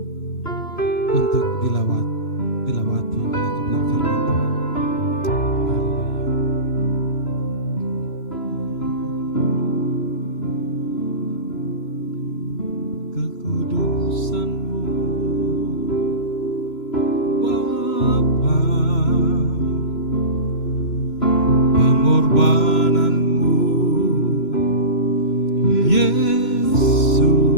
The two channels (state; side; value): late; right; 3.0 ms